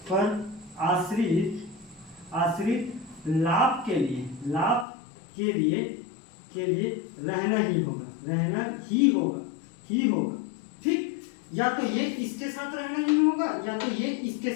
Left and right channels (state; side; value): drops out; right; at 4.9 s